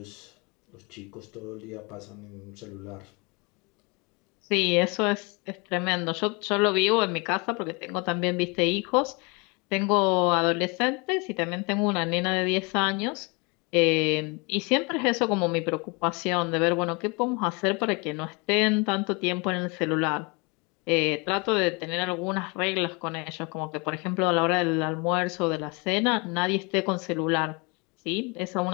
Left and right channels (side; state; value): right; quieter; 28.8 dB